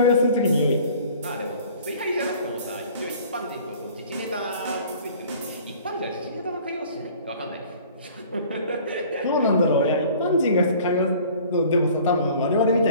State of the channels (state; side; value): inverted; both; correlation -0.50